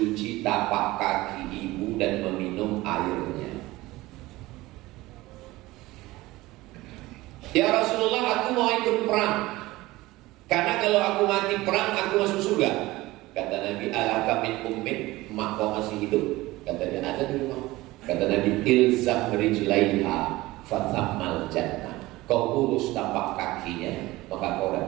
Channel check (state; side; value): quieter; left; 19.0 dB